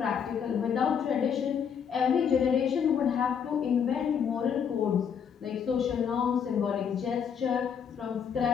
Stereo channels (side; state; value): right; quieter; 7.4 dB